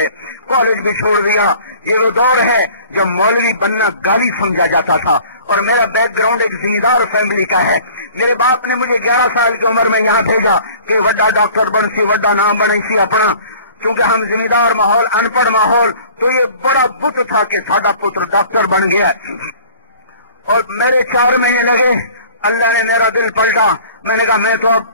कॉलेज भी छोड़ दिया। ये वो दौर है जब मौलवी बनना गाली समझा जाता था। और मेरा बैकग्राउंड एक जिम्मेदार फैमिली का है। मेरे बाप ने मुझे 11 साल की उम्र में यहाँ भेजा कि वड्डा डॉक्टर बन सी, वड्डा नाम बने सी अपना। क्योंकि हम जिम्मेदार माहौल, अनपढ़ माहौल, तो ये बड़ा बुत था कि साडा पुत्र डॉक्टर बन गया। और मेरे 4 महीने लगे, अल्लाह ने मेरा दिल पलटा। मैंने कहा मैं तो अब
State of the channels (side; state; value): both; inverted; correlation -0.49